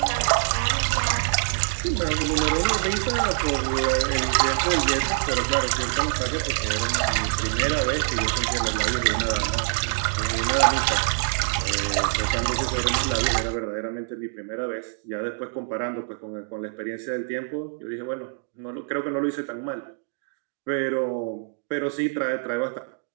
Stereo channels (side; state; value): left; silent; digital silence